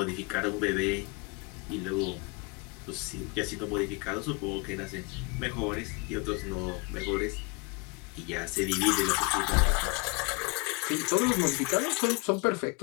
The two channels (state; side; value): quieter; right; 29.6 dB